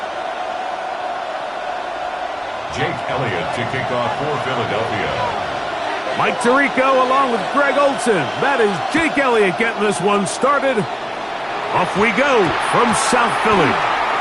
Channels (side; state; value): both; identical; correlation 1.00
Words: Jake Elliott to kick off for Philadelphia. Mike Tirico along with Greg Olson. That is Jake Elliott getting this one started. Off we go from South Philly.